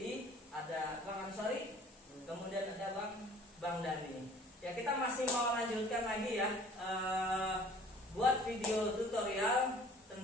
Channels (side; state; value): both; normal; correlation 0.51